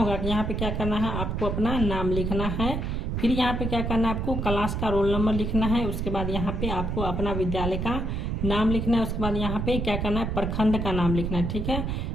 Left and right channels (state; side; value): noise; right; rumble, 1 dB below the sound